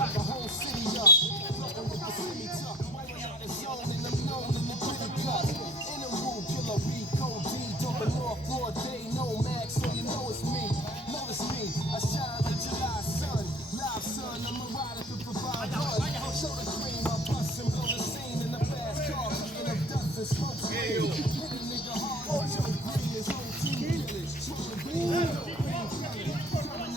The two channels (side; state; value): both; normal; correlation 0.52